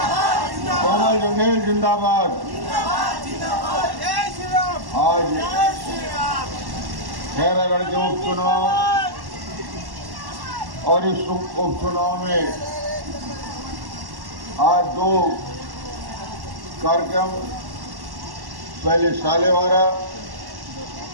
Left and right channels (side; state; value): left; late; 1.1 ms